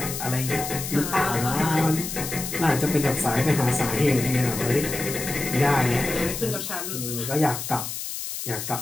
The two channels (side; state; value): left; noise; hiss, 6 dB below the sound